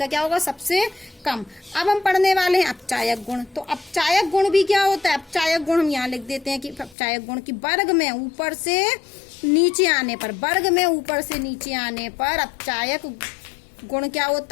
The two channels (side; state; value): right; drops out; at 7.0 s